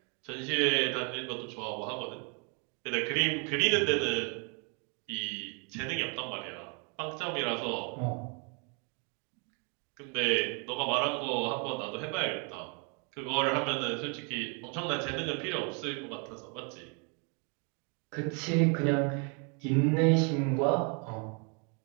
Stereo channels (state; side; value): quieter; left; 36.2 dB